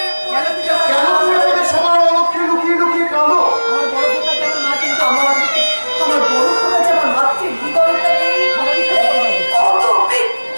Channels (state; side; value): inverted; both; correlation -1.00